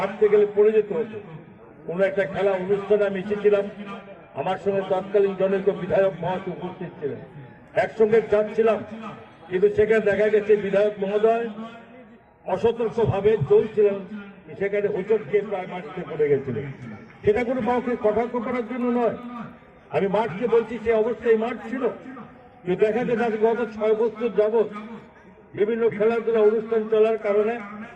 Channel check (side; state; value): both; identical; correlation 1.00